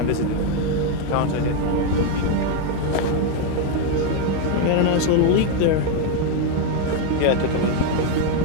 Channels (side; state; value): both; different; correlation 0.01